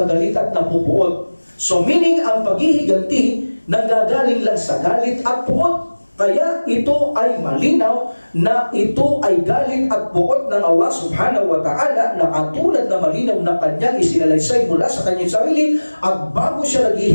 galit at napupuot? So meaning, ang paghihiganti, nagagaling lang sa galit at puot. Kaya ito ay malinaw na ito ay galit at puot ng Allah subhanahu wa ta'ala na katulad na malinaw na kanyang isinalaysay mula sa kanyang sarili at bago siya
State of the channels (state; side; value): inverted; both; correlation -1.00